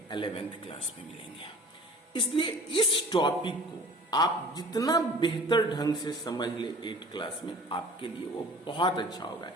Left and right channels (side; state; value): both; normal; correlation 0.46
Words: 11th क्लास में मिलेंगे. इसलिए इस टॉपिक को आप जितना बेहतर ढंग से समझ ले 8 क्लास में, आपके लिए वो बहुत अच्छा होगा.